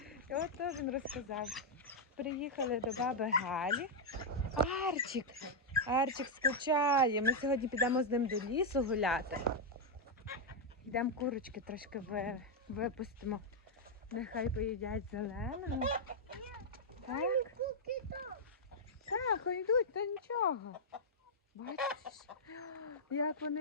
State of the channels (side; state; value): both; normal; correlation -0.04